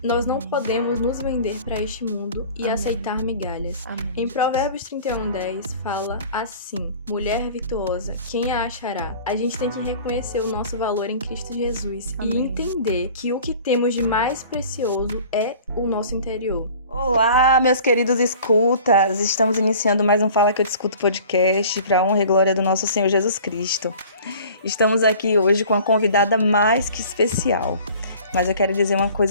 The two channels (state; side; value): inverted; both; correlation -0.46